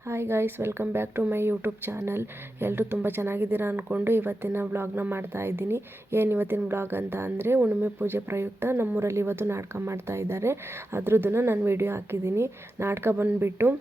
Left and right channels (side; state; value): both; normal; correlation 0.91